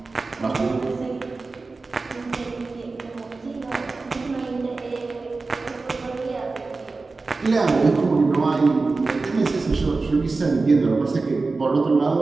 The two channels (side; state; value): left; quieter; 3.8 dB